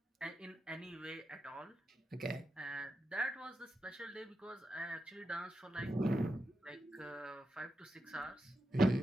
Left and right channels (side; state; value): both; normal; correlation 0.87